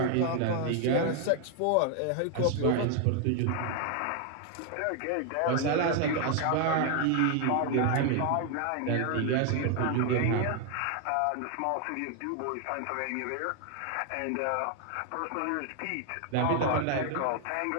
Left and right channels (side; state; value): both; different; correlation 0.01